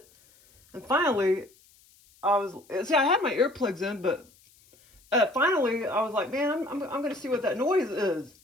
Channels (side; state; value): left; noise; hiss, 29 dB below the sound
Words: And finally, I had my earplugs in, but finally I was like, man, I'm going to see what that noise is.